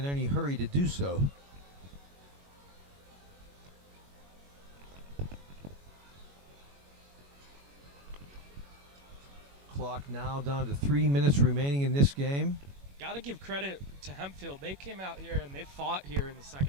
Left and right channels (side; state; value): left; late; 21 ms